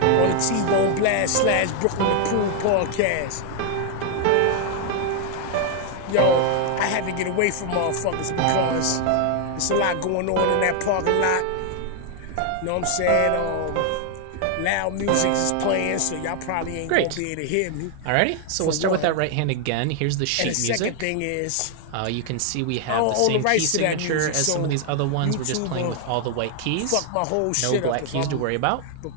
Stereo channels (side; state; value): both; different; correlation 0.00